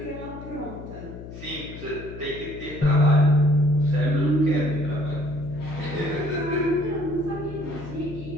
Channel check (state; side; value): noise; left; hum, 12 dB below the sound